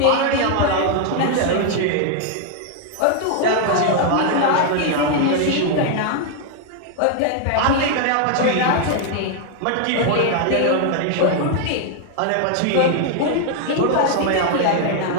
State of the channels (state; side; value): different; both; correlation 0.00